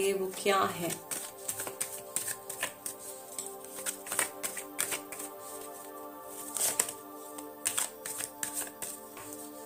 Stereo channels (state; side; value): identical; both; correlation 1.00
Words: वो क्या है।